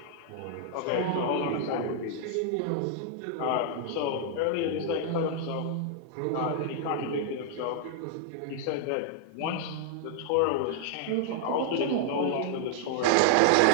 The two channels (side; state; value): both; different; correlation -0.01